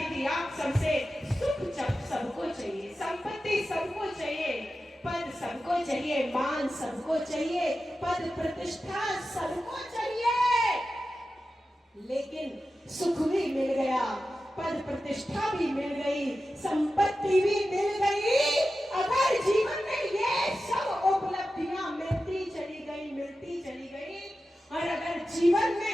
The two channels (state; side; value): normal; both; correlation 0.93